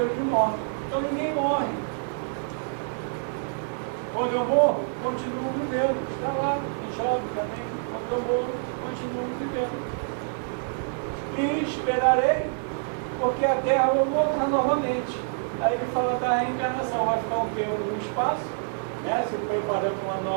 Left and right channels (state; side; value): silent; left; digital silence